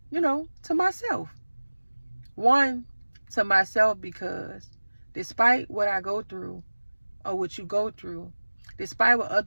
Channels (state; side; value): inverted; both; correlation -1.00